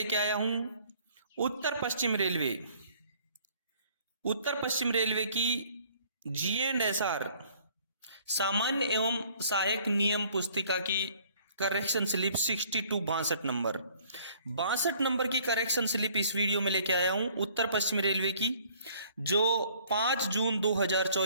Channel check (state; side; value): inverted; both; correlation -0.58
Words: आया हूं उत्तर पश्चिम रेलवे की G&SR सामान्य एवं सहायक नियम पुस्तिका की करेक्शन स्लिप 62 नंबर की करेक्शन स्लिप इस वीडियो में लेके आया हूं उत्तर पश्चिम रेलवे की, जो 5 जून